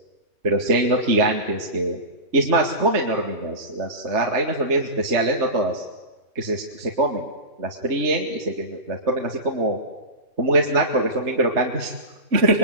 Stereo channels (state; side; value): late; left; 3.2 ms